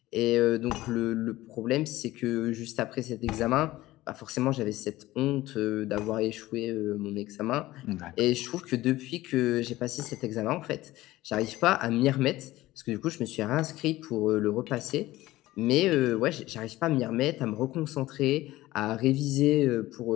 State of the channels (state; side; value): quieter; right; 17.0 dB